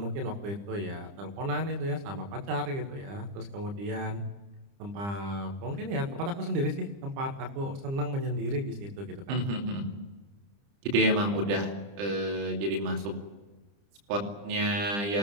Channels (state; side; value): late; left; 30 ms